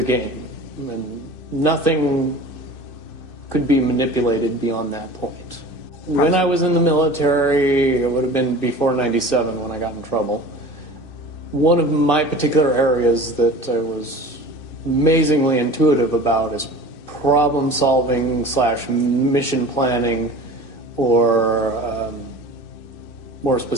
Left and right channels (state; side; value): late; right; 2.6 ms